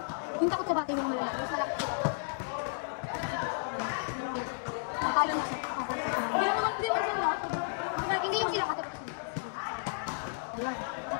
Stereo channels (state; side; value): silent; right; digital silence